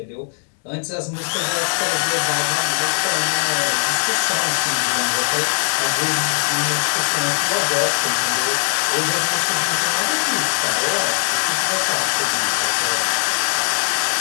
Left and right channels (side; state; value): right; silent; 64 dB below the other